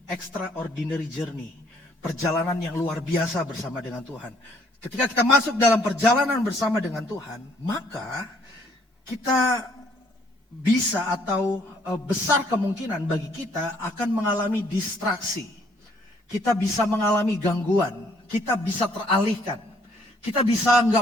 Extraordinary Journey, perjalanan yang luar biasa bersama dengan Tuhan. Ketika kita masuk dalam perjalanan bersama dengan Tuhan, maka kita bisa atau besar kemungkinan bagi kita akan mengalami distraksi. Kita bisa mengalami gangguan, kita bisa teralihkan, kita bisa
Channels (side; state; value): both; normal; correlation 0.65